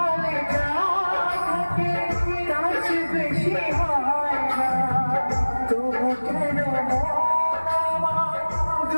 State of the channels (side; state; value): both; inverted; correlation -1.00